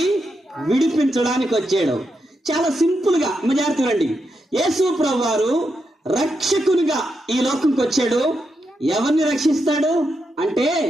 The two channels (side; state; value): both; normal; correlation 0.84